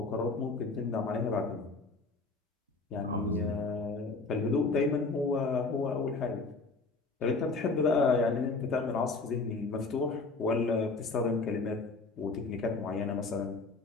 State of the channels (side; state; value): right; quieter; 3.8 dB